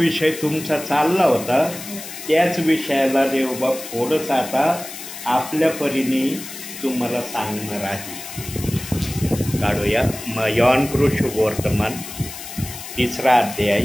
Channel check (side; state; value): left; noise; hiss, 11 dB below the sound